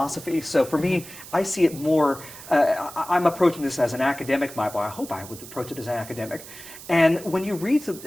so for me, I see it more, I'm approaching this as an academic. I hope I would approach it as an academic. And when you read,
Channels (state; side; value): noise; right; hiss, 15 dB below the sound